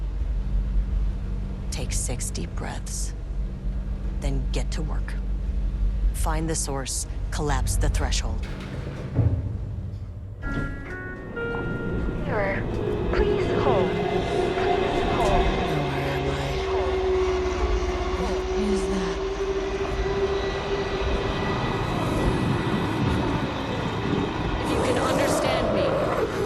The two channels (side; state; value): both; identical; correlation 1.00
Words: Take 6 deep breaths, then get to work. Find the source, collapse the threshold. Mirror, please hold. Please hold. Where am I? What is that? If you can understand me,